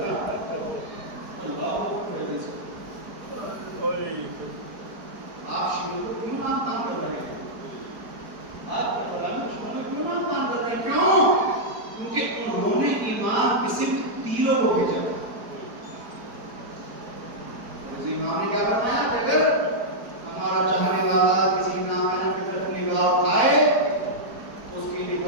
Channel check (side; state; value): left; late; 4.6 ms